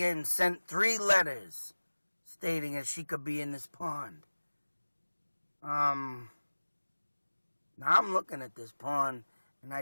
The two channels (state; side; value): inverted; both; correlation -1.00